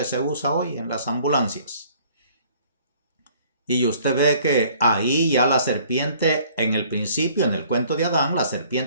se usa hoy en las ambulancias. Y usted ve que ahí ya la serpiente, en el principio, en el cuento de Adán, la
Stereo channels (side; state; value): both; inverted; correlation -0.56